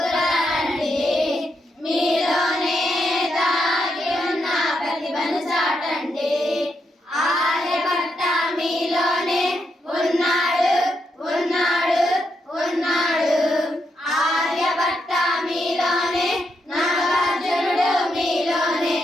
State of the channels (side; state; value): both; normal; correlation 0.81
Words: రండి, మీలోనే దాగి ఉన్న ప్రతిభను చాటండి. ఆర్యభట్ట మీలోనే ఉన్నాడు ఉన్నాడు ఉన్నాడు, ఆర్యభట్ట మీలోనే, నాగార్జునుడు మీలోనే,